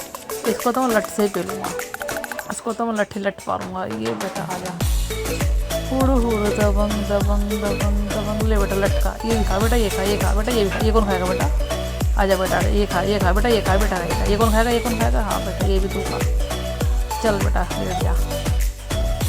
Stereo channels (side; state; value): both; identical; correlation 1.00